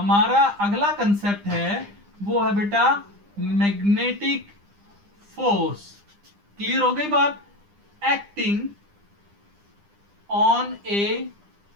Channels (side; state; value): left; late; 9.9 ms